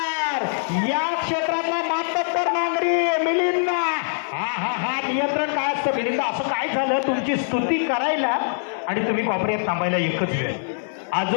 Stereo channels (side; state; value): right; silent; 63 dB below the other